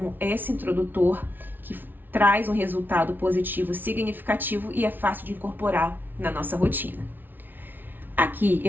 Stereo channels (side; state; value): left; late; 0.091 ms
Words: esse introdutor que traz um resultado positivo significativo e é fácil de incorporar na nossa rotina. Aqui